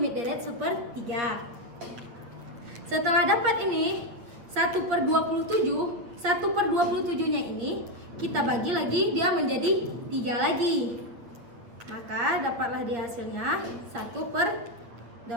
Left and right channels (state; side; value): late; left; 8.5 ms